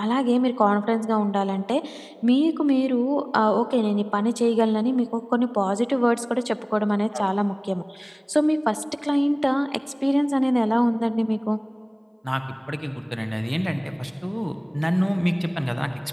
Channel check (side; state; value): both; identical; correlation 1.00